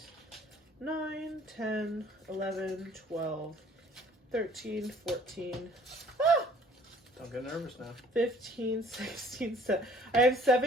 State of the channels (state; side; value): normal; both; correlation 0.55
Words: 9, 10, 11, 12, 13, 14, Don't get nervous now. 15, 16, 17. I have